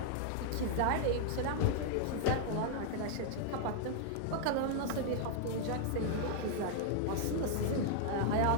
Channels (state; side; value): different; both; correlation -0.01